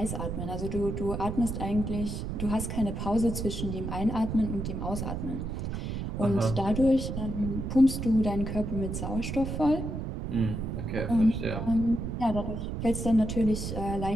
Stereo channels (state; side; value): noise; right; rumble, 4 dB below the sound